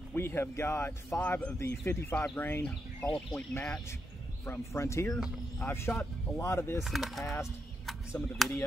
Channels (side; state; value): both; normal; correlation 0.82